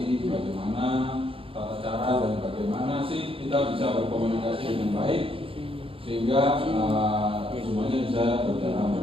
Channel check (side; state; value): left; late; 0.27 ms